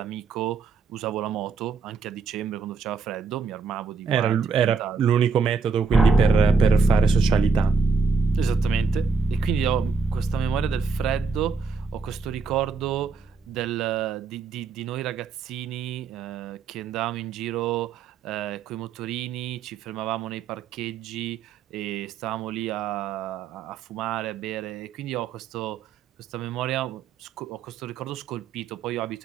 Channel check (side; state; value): left; quieter; 5.0 dB